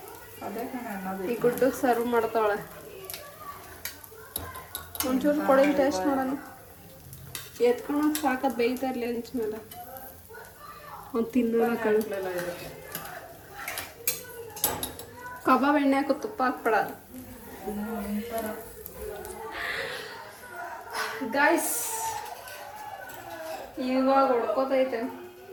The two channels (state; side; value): identical; both; correlation 1.00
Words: ಅದೇ ಕಣೆ ಅನ್ನೋದು ಈ ಗುಡ್ಡುಗೆ ಸರ್ವ್ ಮಾಡ್ತಾವಳೆ ಒಂಚೂರು ಕೊಡಿ ಟೇಸ್ಟ್ ನೋಡೋಣ ಎತ್ಕೊಳಕ್ಕೆ ಸಾಕದು ಬೇಯ್ತಾ ಇರಲಿ ಹಂಚ ಮೇಲೆ ಒಂದು ತಿನ್ನೋಣ ಕಣ್ ಕಬಾಬ್ ಎಣ್ಣೆ ಹಾಕೋ ತುಪ್ಪ ಹಾಕ್ಬೇಡ ಗಾಯ್ಸ್ ಇವಾಗ ಹೊಡ್ಕೋತೈತೆ